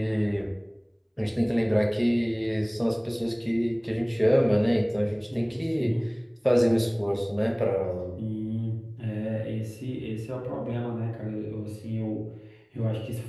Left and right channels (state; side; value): identical; both; correlation 1.00